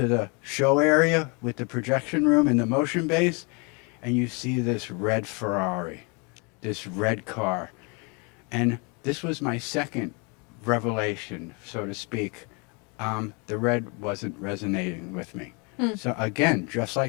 show area with the projection room and the motion base, and you see this red Ferrari, this red car. And this was my second revelation, so to speak. The red wasn't resonating with me. So again, just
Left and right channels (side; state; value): right; quieter; 32.2 dB